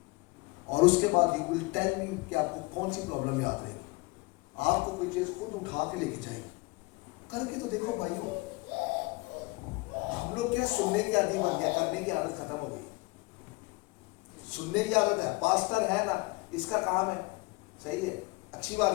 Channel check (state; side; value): quieter; right; 25.0 dB